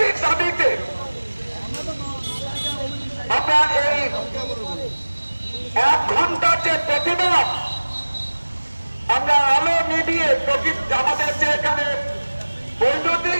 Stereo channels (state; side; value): inverted; both; correlation -1.00